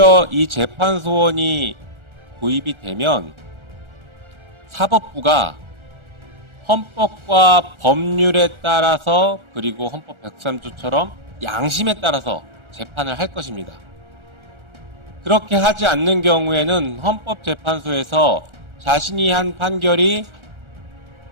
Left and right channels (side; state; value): left; late; 1.4 ms